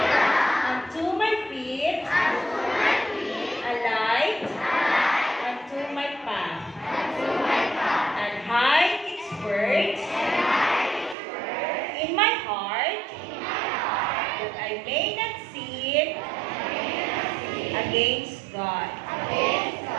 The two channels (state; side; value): drops out; left; at 11.2 s